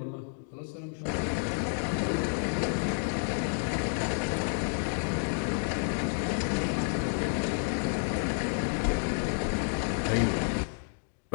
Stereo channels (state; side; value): silent; right; 58 dB below the other